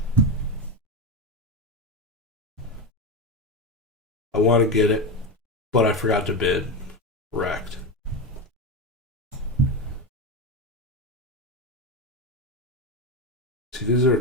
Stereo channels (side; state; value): both; normal; correlation 0.17